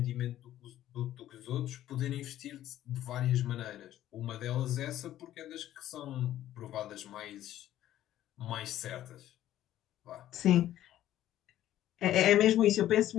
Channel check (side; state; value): right; quieter; 12.9 dB